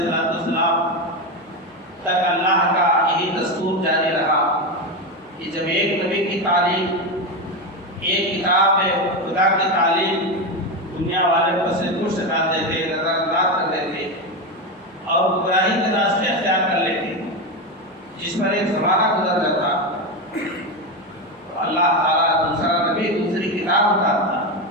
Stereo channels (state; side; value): normal; both; correlation 0.14